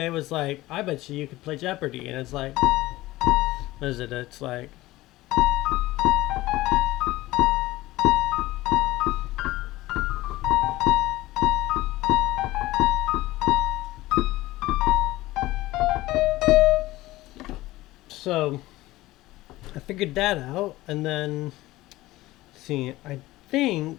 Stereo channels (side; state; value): right; quieter; 17.8 dB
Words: was like, I bet you could play Jeopardy, and it's like, what is it? It's like, so I figured that out, and then see, I think